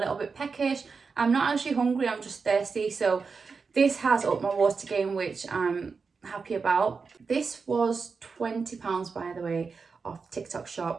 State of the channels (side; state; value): left; quieter; 4.9 dB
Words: bit peckish, I'm not actually hungry, I'm just thirsty. So this has upped my water gain, which I'm happy about. This was £20, by the way, off TikTok